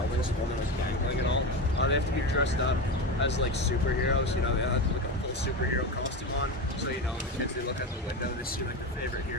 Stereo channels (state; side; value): normal; both; correlation 0.20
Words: while they're like dangling and all. They have to be dressed up as like superheroes, you know, they have like a full superhero costume on. So, you know, the kids, they look out the window, they see like their favorite